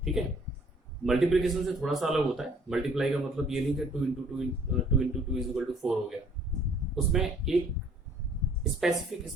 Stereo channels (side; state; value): both; normal; correlation 0.58